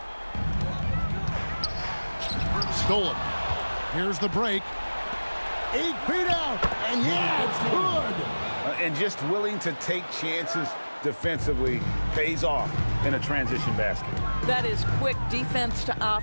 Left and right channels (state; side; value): inverted; both; correlation -1.00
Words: Stolen. Here's the break. 8 feet out, and yeah, it's good. And just willing to take chances defensively pays off in a transition basket. That is quick defense to